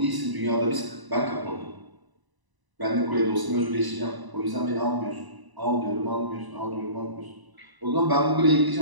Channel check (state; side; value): late; left; 1.0 ms